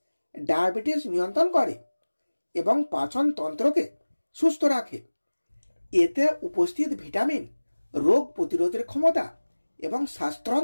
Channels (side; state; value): both; inverted; correlation -1.00